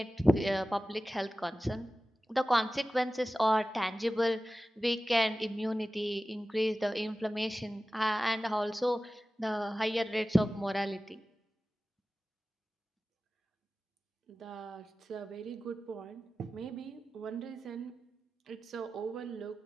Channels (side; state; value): both; normal; correlation 0.96